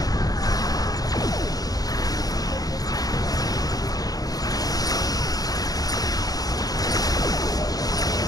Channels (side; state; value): right; late; 0.18 ms